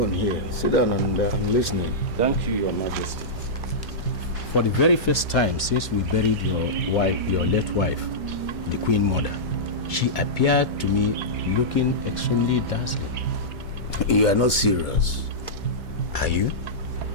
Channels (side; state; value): both; normal; correlation -0.13